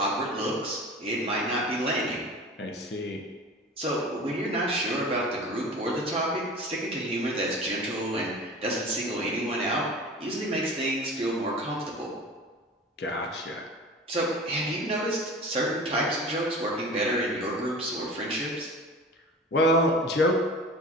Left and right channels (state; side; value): normal; both; correlation 0.37